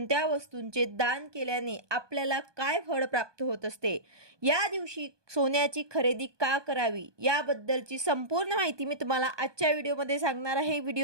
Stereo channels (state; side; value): late; left; 1.2 ms